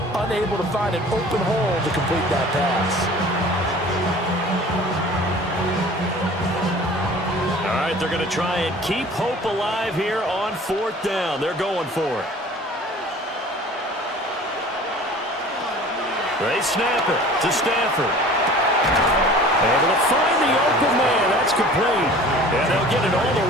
unable to find an open hole to complete that pass. All right, they're going to try and keep hope alive here on 4th down. They're going for it. They snap it to Stafford. Able to find the open man. That's complete. And they'll get it all the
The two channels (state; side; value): normal; both; correlation 0.45